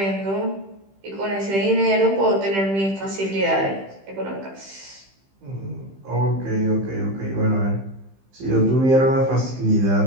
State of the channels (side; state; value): left; late; 15 ms